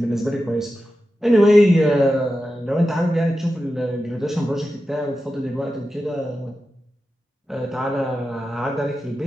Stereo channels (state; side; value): normal; both; correlation 0.91